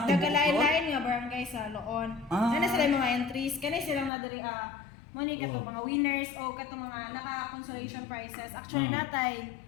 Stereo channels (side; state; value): right; drops out; at 4.1 s